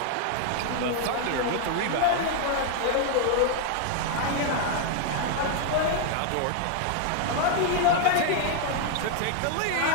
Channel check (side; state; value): both; different; correlation 0.00